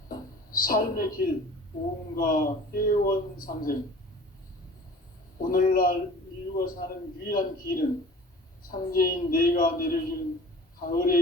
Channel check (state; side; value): normal; both; correlation 0.44